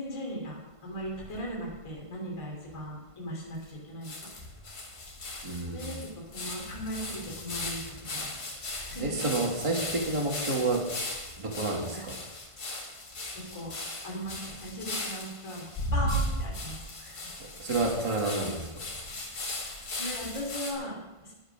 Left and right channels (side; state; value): left; late; 1.5 ms